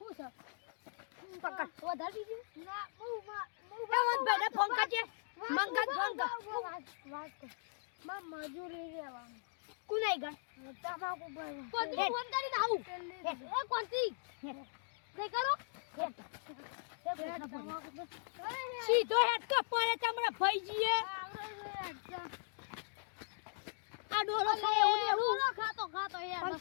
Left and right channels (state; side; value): silent; right; digital silence